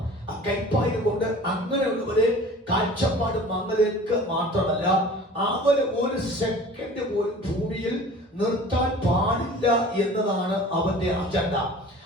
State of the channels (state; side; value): normal; both; correlation 0.43